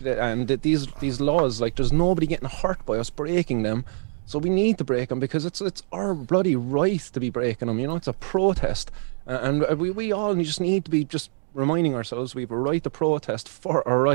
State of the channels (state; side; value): silent; left; digital silence